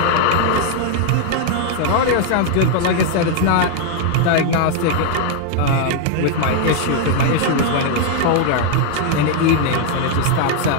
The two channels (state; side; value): different; both; correlation 0.00